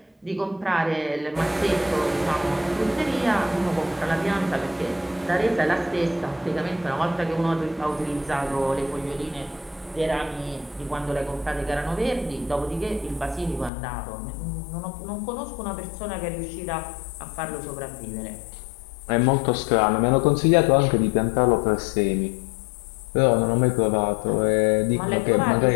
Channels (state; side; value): drops out; right; at 13.7 s